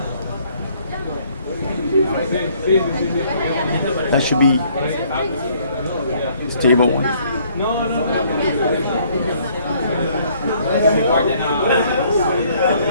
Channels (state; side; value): inverted; both; correlation -0.63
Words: That should be stable one.